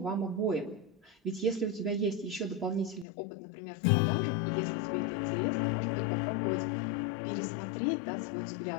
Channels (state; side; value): drops out; right; at 3.1 s